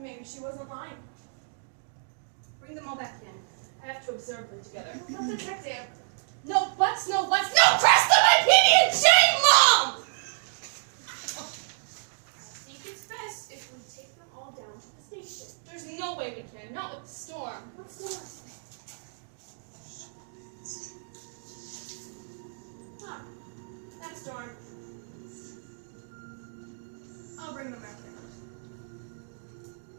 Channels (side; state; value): left; silent; digital silence